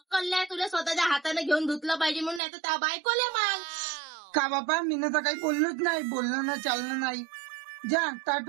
नाही तुला स्वतःच्या हाताने घेऊन धुतलं पाहिजे म्हणून, नाही तर त्या बायकोले माग. का बापा मी तर काही बोललोच नाही. बोलणं ना चालणं नाही. जा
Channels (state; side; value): drops out; left; at 2.4 s